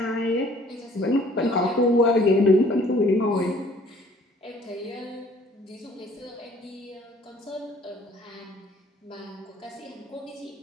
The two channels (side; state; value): both; normal; correlation 0.56